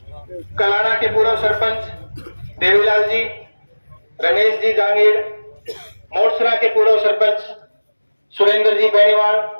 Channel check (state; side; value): inverted; both; correlation -1.00